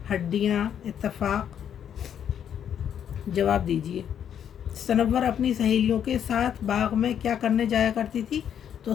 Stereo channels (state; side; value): quieter; right; 9.0 dB